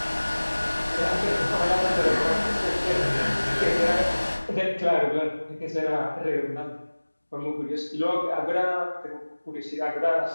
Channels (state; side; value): inverted; both; correlation -1.00